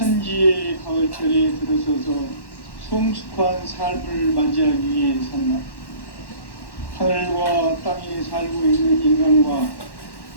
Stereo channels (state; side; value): late; right; 1.1 ms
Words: 가을철에 들어서서 성숙한 삶을 맞이하기 위해 산다. 하늘과 땅에 살고 있는 인간과